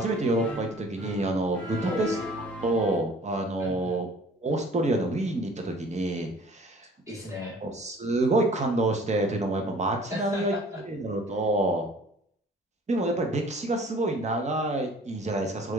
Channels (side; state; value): both; normal; correlation 0.51